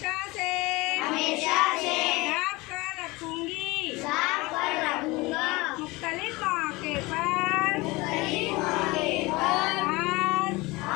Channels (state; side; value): quieter; right; 22.7 dB